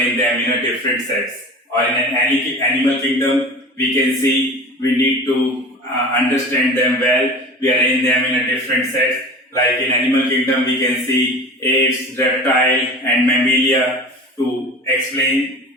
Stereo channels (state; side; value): normal; both; correlation 0.36